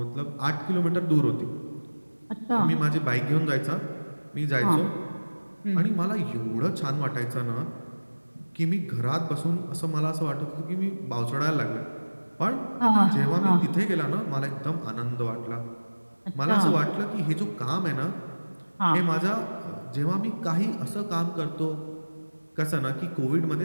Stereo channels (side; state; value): both; inverted; correlation -1.00